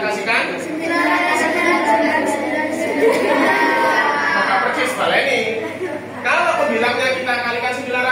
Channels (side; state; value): both; identical; correlation 1.00